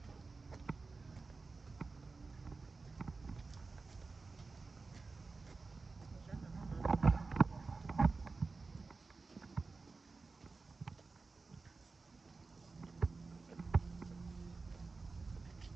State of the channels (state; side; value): quieter; left; 4.0 dB